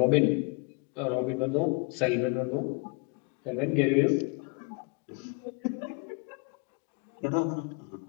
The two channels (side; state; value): right; quieter; 31.9 dB